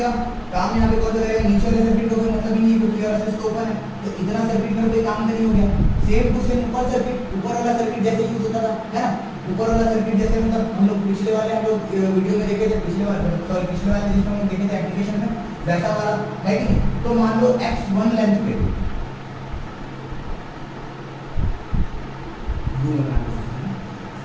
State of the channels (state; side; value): identical; both; correlation 1.00